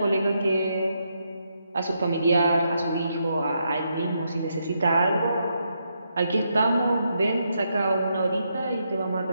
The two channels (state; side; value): inverted; both; correlation -0.80